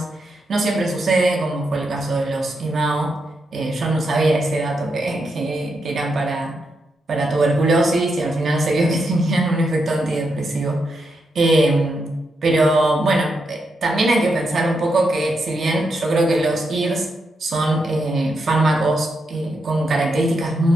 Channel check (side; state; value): both; normal; correlation 0.83